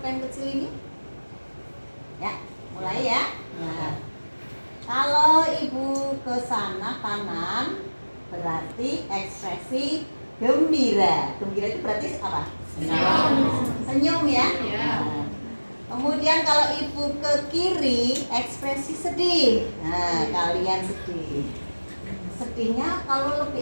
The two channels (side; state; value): both; inverted; correlation -1.00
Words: kecil ini? Ya, mulai ya. Nah, kalau ibu ke sana kanan, berarti ekspresi gembira. Gembira itu berarti apa? Senyum ya. Nah, kemudian kalau ibu ke kiri, ekspresi sedih. Nah, kalian sedih. Sedihnya kalau